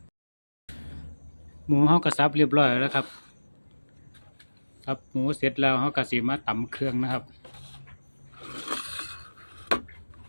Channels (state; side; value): inverted; both; correlation -1.00